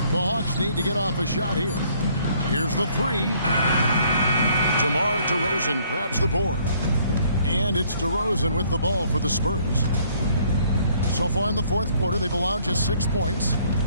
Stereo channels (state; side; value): inverted; both; correlation -0.63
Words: The Hawks need to get off a shot here. Here's the 3. DeMar DeRozan grabs the board. And it's DeRozan with the ball for the Spurs. So far in the 4th quarter, they've allowed just 6 points.